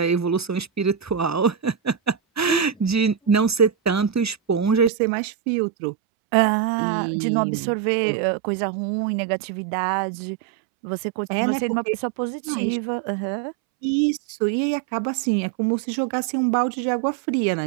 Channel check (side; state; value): left; drops out; at 4.9 s